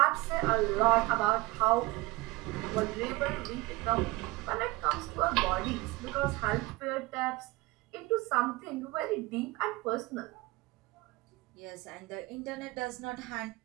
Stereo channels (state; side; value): quieter; left; 21.3 dB